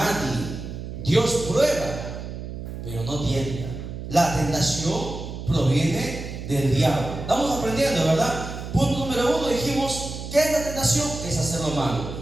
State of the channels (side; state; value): right; noise; hum, 8 dB below the sound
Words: Dios prueba, pero no tienta. La tentación proviene del diablo. Estamos aprendiendo, ¿verdad? Punto número 1, dijimos: ¿qué es la tentación? Es hacer lo